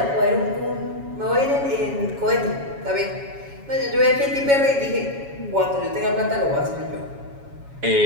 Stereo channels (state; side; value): late; left; 7.2 ms